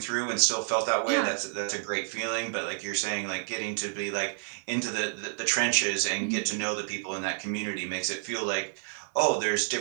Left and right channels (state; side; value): silent; left; 58 dB below the other